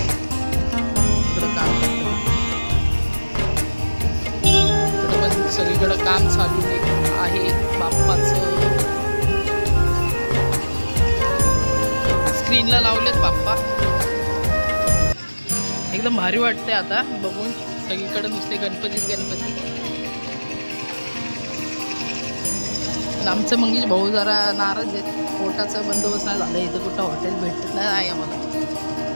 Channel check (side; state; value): both; inverted; correlation -1.00